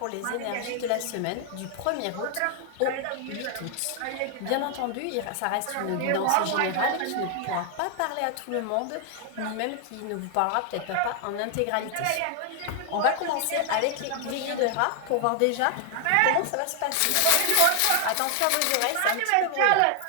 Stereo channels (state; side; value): different; both; correlation 0.00